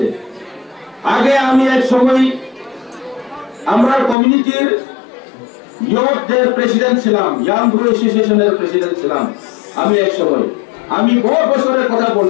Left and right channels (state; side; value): drops out; right; at 4.2 s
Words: আগে আমি এক সময় আমরা কমিউনিটির ইয়ুথদের প্রেসিডেন্ট ছিলাম, ইয়াং গ্রো অ্যাসোসিয়েশনের প্রেসিডেন্ট ছিলাম আমি এক সময়। আমি বহু বছরের কথা